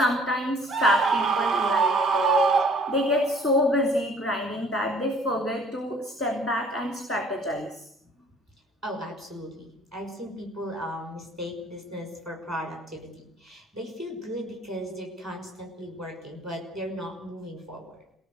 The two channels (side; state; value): both; normal; correlation 0.55